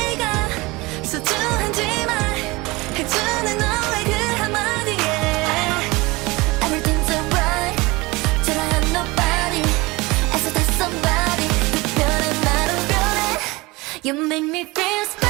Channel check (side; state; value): left; quieter; 23.0 dB